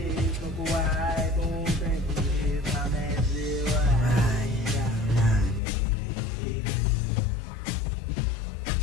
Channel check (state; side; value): drops out; right; at 5.6 s